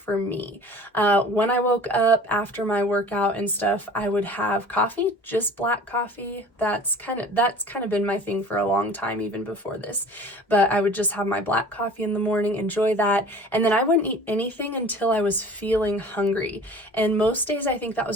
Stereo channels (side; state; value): both; normal; correlation 0.44